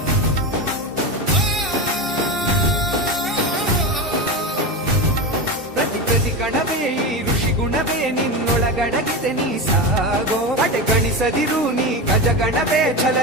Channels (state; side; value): normal; both; correlation 0.20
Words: ಪ್ರತಿ ಕಣವೇ ಈ ಋಷಿ ಗುಣವೇ ನಿನ್ನೊಳಗಡಗಿದೆ, ನೀ ಸಾಗೋ. ಗಣಿಸದಿರು ನೀ ಗಜಗಣವೇ